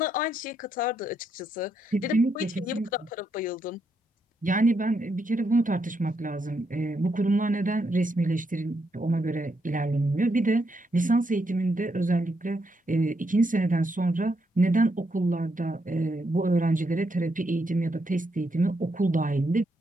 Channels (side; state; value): both; normal; correlation 0.79